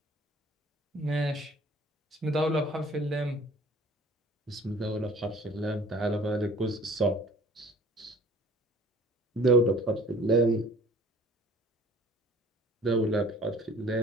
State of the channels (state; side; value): normal; both; correlation 0.50